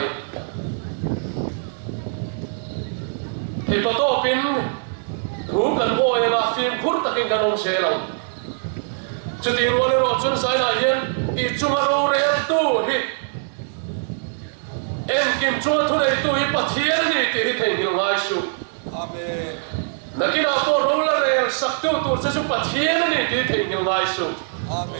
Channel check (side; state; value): left; silent; 64 dB below the other